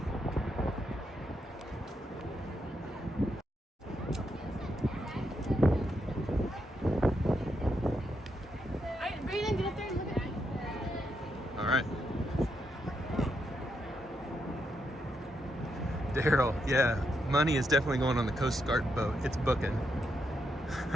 Daryl, yeah, money is definitely going on the Coast Guard boat. It's booking.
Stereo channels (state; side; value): normal; both; correlation 0.81